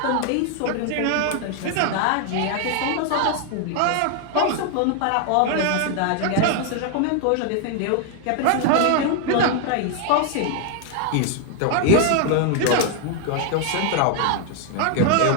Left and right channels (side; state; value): both; different; correlation 0.00